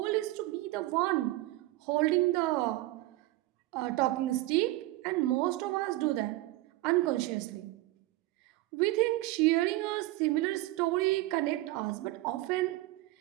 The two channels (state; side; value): quieter; left; 18.2 dB